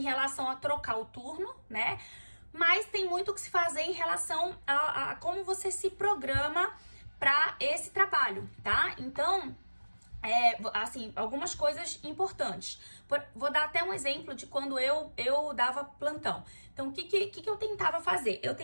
relação a trocar o turno, né? Mas tem muito o que se fazer em relação a como você se programa para esse trabalho, tá? Então, assim, algumas coisas importantes. Vou dar até um exemplo de quando eu dava plantão. Então, o que eu tentava fazer? Eu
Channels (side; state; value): both; inverted; correlation -1.00